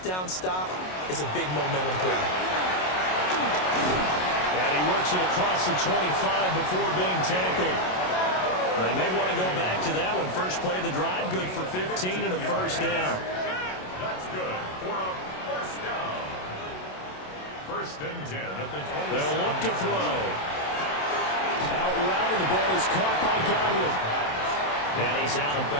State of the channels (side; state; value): right; late; 27 ms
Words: down stop is a big momentum play. And he works it across the 25 before being tackled. They may want to go back to that one. First play of the drive, good for 15 and a first down. That's good for a first down. First and 10 at the 27. They'll look to throw. Out route, and the ball is caught by Godwin. And he's out of